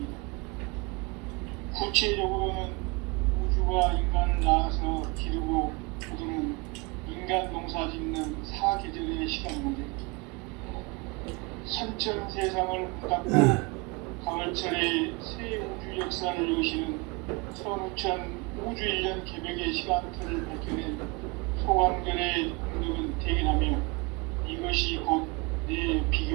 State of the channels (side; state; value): left; quieter; 27.7 dB